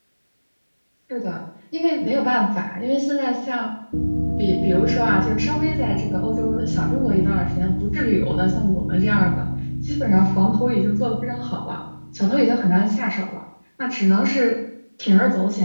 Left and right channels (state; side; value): inverted; both; correlation -1.00